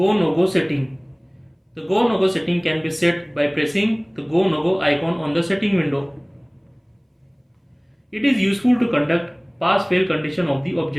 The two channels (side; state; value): both; identical; correlation 1.00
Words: no go setting. The go no go setting can be set by pressing the go no go icon on the setting window. It is useful to conduct pass fail condition of the